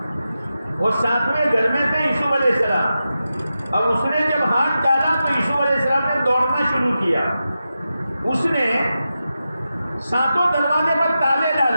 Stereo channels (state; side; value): inverted; both; correlation -0.91